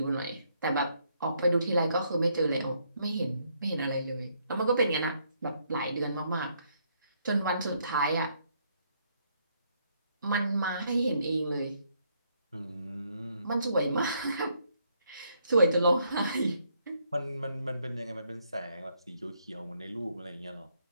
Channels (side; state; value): both; inverted; correlation -0.72